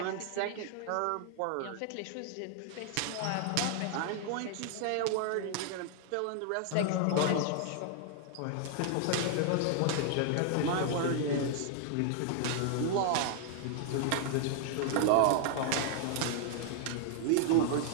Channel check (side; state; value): both; different; correlation 0.00